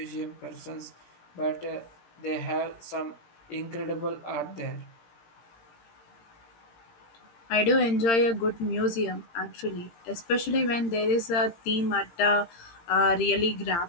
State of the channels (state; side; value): late; right; 18 ms